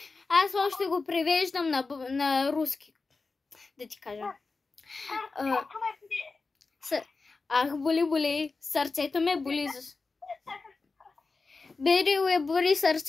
аз още го превеждам на руски. Да ти кажа. Сърцето ме бъде. Ах, боли, сърцето ме боли. Берил е бори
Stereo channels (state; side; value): quieter; right; 4.0 dB